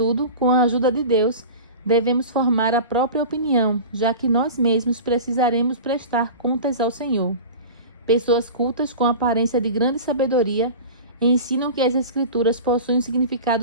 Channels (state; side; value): inverted; both; correlation -0.33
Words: com a ajuda de Deus, devemos formar a própria opinião, já que nós mesmos precisaremos prestar contas ao Senhor. Pessoas cultas com aparência de grande sabedoria ensinam que as Escrituras possuem um